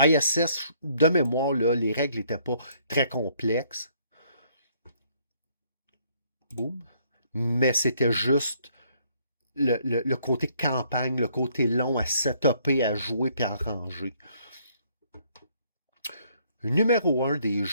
de mémoire, là, les règles n'étaient pas très complexes. Boum. Mais c'était juste le côté campagne, le côté long à setuper, à jouer puis à ranger. Numéro un des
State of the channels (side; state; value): both; inverted; correlation -0.66